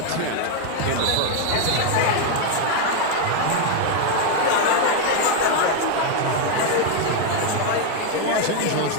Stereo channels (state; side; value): different; both; correlation 0.01